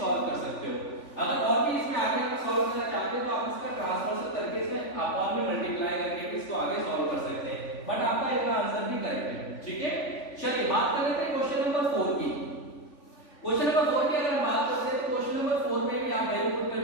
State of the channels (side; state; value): right; late; 3.5 ms